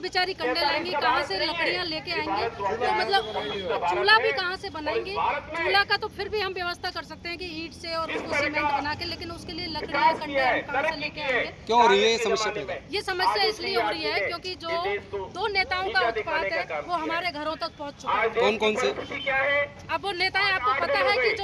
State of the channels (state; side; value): identical; both; correlation 1.00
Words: कंडे लाएंगी, कहाँ से लकड़ियाँ लेके आएंगी? तो मतलब चूल्हा भी कहाँ से बनाएंगी? चूल्हा का तो फिर भी हम व्यवस्था कर सकते हैं कि ईंट से और उसको सीमेंट बना के, लेकिन उसके लिए लकड़ियाँ कंडे हम कहाँ से लेके आएंगे? क्यों हो रही है ये समस्या? ये समस्या इसलिए हो रही है क्योंकि जो दो नेताओं का उत्पात है वो हमारे घरों तक पहुँच चुका है। कौन कौन से? अब वो नेताएं, आपको पता है कि